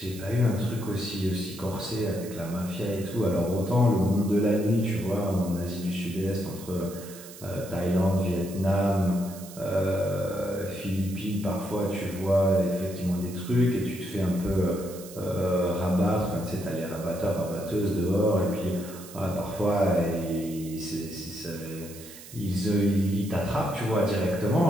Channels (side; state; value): right; noise; hiss, 16 dB below the sound